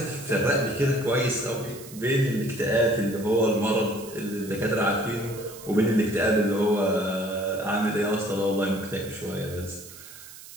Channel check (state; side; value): noise; right; hiss, 17 dB below the sound